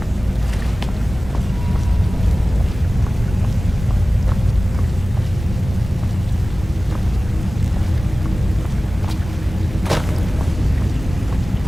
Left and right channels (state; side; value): normal; both; correlation 0.97